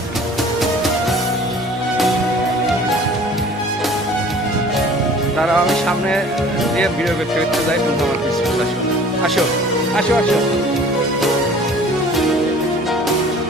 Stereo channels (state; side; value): normal; both; correlation 0.48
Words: তারা আমি সামনে দিয়ে ভিডিও করতে যাই, কিন্তু আমার কিছু আসো আসো আসো।